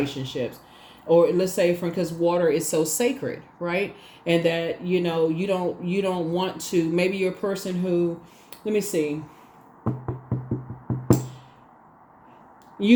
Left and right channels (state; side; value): identical; both; correlation 1.00